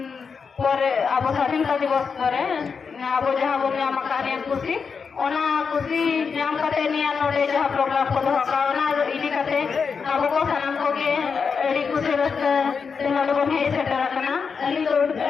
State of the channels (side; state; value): right; quieter; 5.7 dB